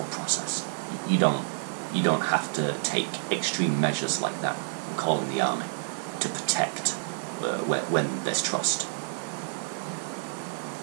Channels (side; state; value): left; silent; digital silence